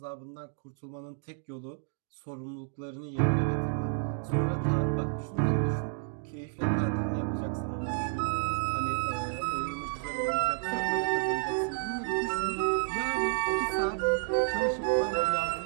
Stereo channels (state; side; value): silent; left; 57 dB below the other